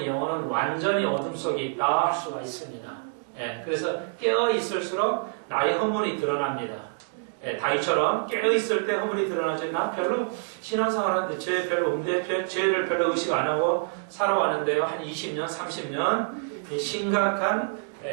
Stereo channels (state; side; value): silent; left; digital silence